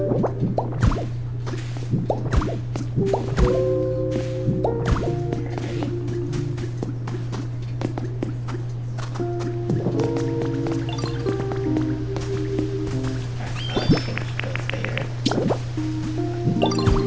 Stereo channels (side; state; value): both; identical; correlation 1.00